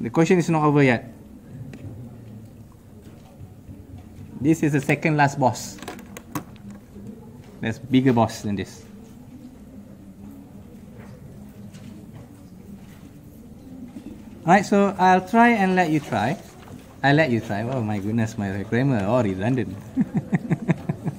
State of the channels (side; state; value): both; identical; correlation 1.00